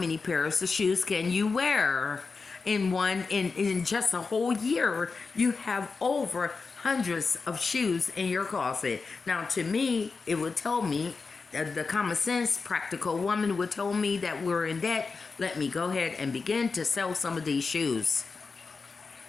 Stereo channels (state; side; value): quieter; right; 4.5 dB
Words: pairs of shoes can you wear? In just a whole year, you have over hundreds of shoes in your closet. Now, to me, it would tell me, the common sense, practical woman would tell me that we're in debt. Let me go ahead and begin to sell some of these shoes.